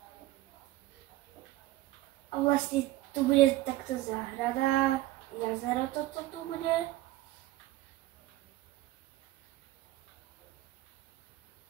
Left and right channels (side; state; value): left; quieter; 16.4 dB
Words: A vlastne tu bude takto záhrada, jazero toto tu bude.